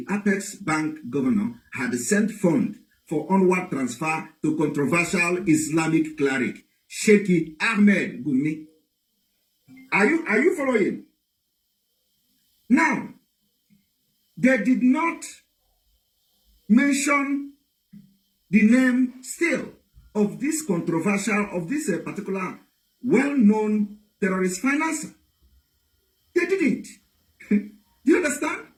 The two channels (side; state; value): both; identical; correlation 1.00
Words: Apex Bank governor had sent funds for onward transfer to controversial Islamic cleric Sheikh Ahmed Gumi. Are you following? Now, they did not mention the name still of this controversial, of this particular well-known terrorist financer. They didn't. Do you understand?